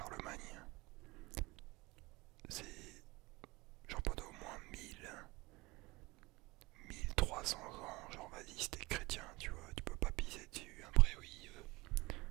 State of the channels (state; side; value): quieter; left; 22.8 dB